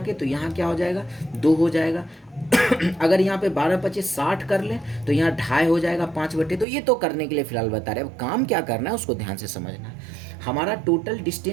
तो यहाँ क्या हो जाएगा 2 हो जाएगा। अगर यहाँ पे 12 25 60 कर लें तो यहाँ 2.5 हो जाएगा 5/। तो ये तो करने के लिए फिलहाल बता रहे हैं, अब काम क्या करना है उसको ध्यान से समझना है। हमारा टोटल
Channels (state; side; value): drops out; left; at 6.7 s